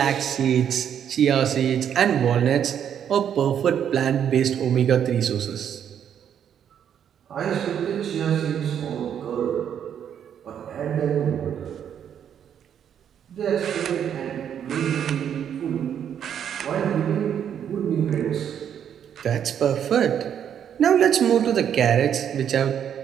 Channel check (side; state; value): left; quieter; 8.9 dB